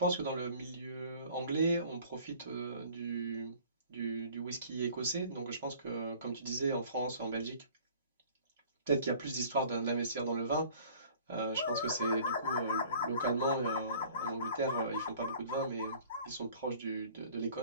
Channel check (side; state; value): both; inverted; correlation -0.51